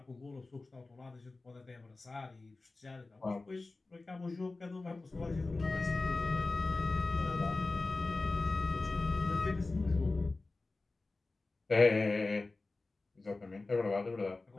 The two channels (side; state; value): right; quieter; 3.4 dB